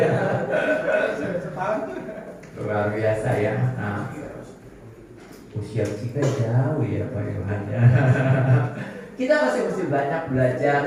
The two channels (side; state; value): both; identical; correlation 1.00